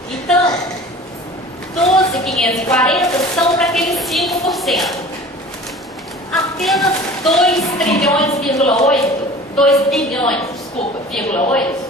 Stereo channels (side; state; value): both; normal; correlation 0.42